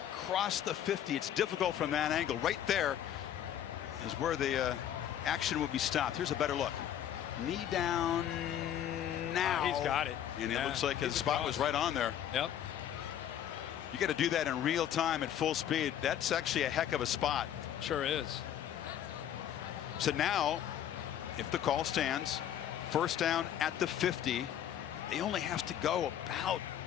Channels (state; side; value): quieter; right; 10.4 dB